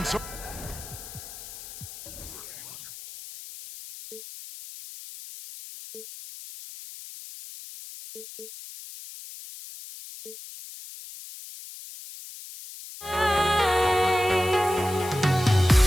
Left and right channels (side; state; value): left; noise; hiss, 14 dB below the sound